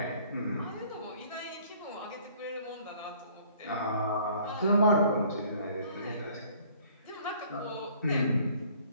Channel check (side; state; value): both; inverted; correlation -0.56